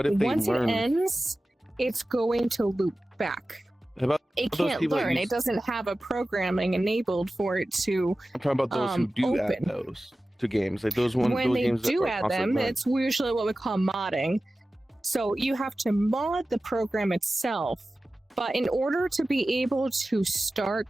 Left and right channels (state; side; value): normal; both; correlation 0.95